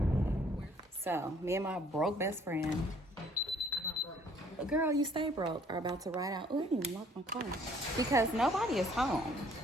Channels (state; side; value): normal; both; correlation 0.60